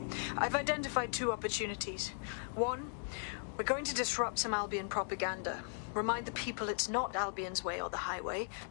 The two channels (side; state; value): right; silent; digital silence